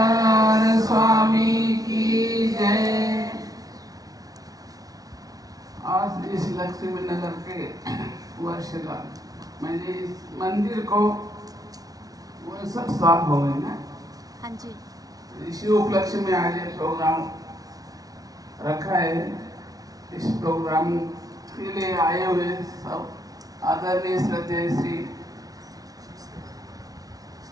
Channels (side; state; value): left; late; 0.18 ms